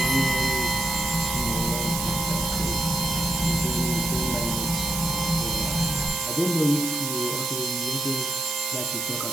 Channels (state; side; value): noise; right; hiss, 2 dB below the sound